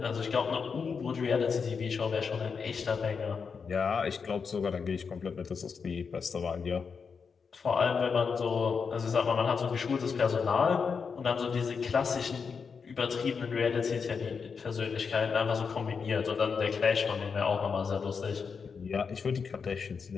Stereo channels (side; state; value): right; quieter; 5.7 dB